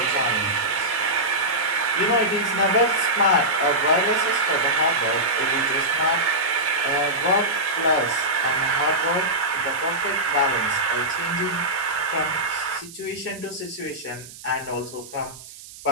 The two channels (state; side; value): noise; right; hiss, 17 dB below the sound